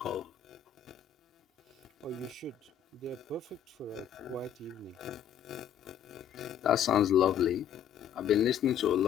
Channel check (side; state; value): right; quieter; 9.2 dB